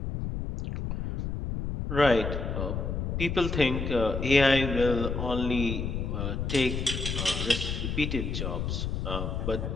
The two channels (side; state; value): left; noise; rumble, 3 dB below the sound